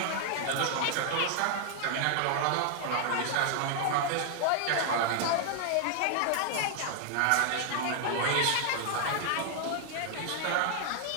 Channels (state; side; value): different; both; correlation 0.00